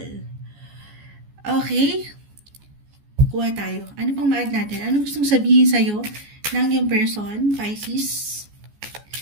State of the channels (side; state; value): left; late; 14 ms